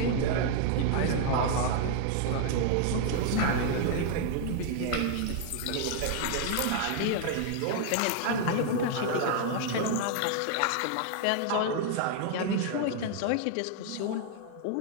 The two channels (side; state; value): both; different; correlation 0.00